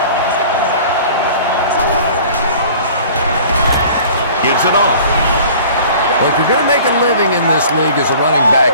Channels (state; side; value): inverted; both; correlation -0.46